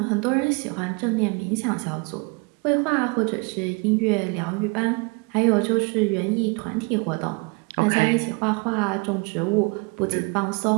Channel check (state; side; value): quieter; left; 30.9 dB